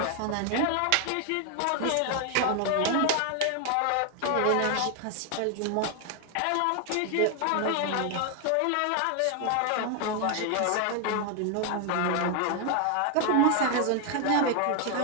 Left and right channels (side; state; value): both; different; correlation 0.01